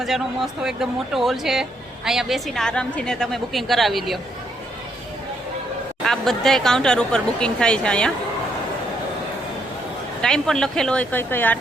મસ્ત એકદમ મોટો હોલ છે. અહીંયા બેસીને આરામથી ને તમે બુકિંગ કરાવી લ્યો. આ બધાય કાઉન્ટર ઉપર બુકિંગ થાય છે. અહીંયા ટાઈમ પણ લખેલો હોય કઈ કઈ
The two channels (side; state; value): both; normal; correlation 0.74